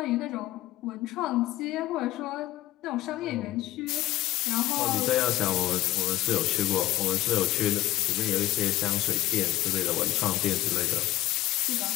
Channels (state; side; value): quieter; right; 15.6 dB